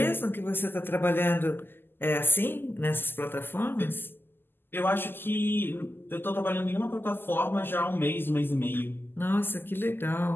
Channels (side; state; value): right; late; 0.098 ms